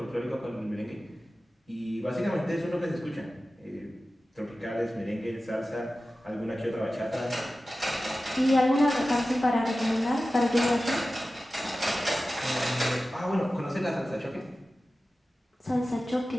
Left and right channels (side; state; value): both; normal; correlation 0.95